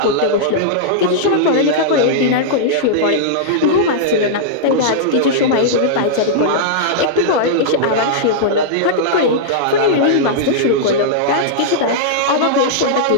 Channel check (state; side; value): different; both; correlation -0.02